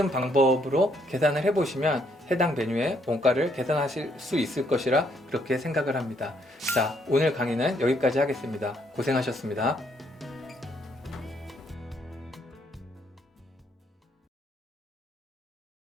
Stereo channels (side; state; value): both; normal; correlation 0.71